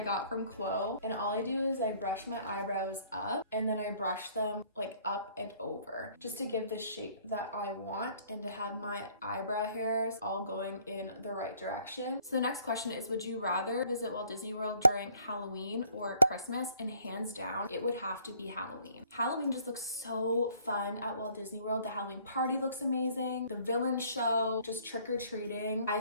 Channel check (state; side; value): inverted; both; correlation -0.60